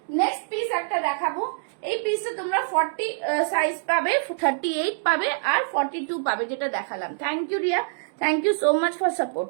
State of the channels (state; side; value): silent; left; digital silence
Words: নেক্সট পিস একটা দেখাবো। এই পিসটা তোমরা 40 সাইজ পাবে, 38 পাবে আর 42 পাবে, যেটা দেখালাম। Thank you Riya, thank you so much for support,